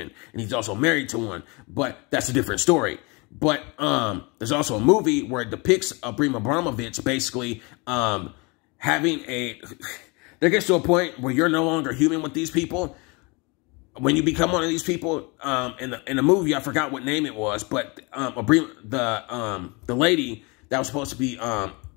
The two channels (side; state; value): right; quieter; 28.2 dB